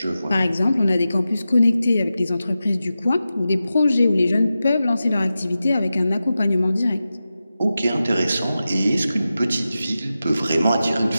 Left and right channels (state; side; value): inverted; both; correlation -0.92